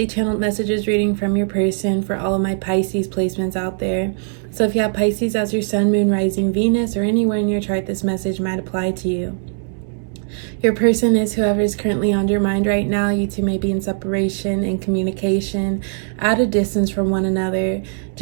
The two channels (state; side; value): silent; left; 66 dB below the other